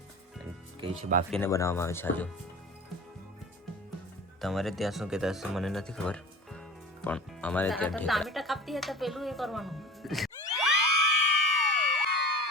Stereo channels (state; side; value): normal; both; correlation 0.39